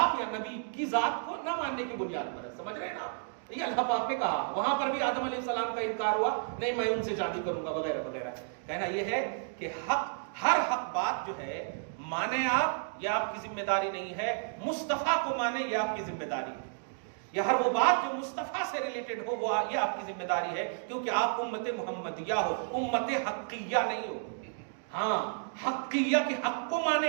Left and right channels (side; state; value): left; silent; digital silence